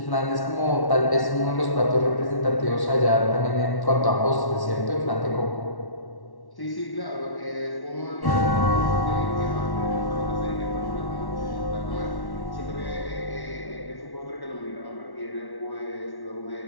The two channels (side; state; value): right; late; 1.1 ms